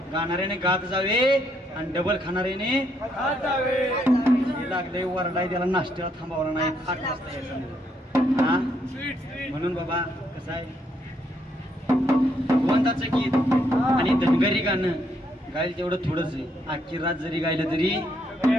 गाणाऱ्याने गात जावे आणि डबल खाणाऱ्याने हे लागले वरडाय, त्याला नाश्त्याला थांबावला नाही. 8 वाजता यायचं नाही. हा म्हणून बाबा कसं आहे, भगवंताचं गीत आणि धनगरी गाणं गायला तेवढं थोडंच आहे. अख्खी रात जरी गायलं तरी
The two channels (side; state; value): both; normal; correlation 0.74